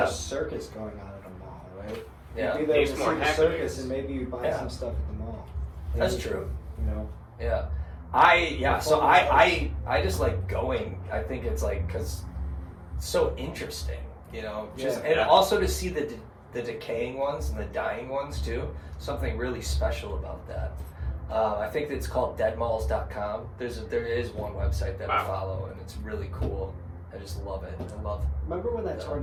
a circus going on at a mall, right? Yeah. You'd be there Needs to more see the happenings. circus, and maybe you buy Yeah. some stuff at the mall. That's Maybe, true. You know. Yeah. So I just like going. I think it's like because it's so interesting, you know. Just Yeah. and also to see the decaying ones and the dying ones too. Something really special about that. I think it's called deadmalls.com. There is one website that I Wow. follow, and it's really cool. I just love it. I love. Remember when that Yeah.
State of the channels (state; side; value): identical; both; correlation 1.00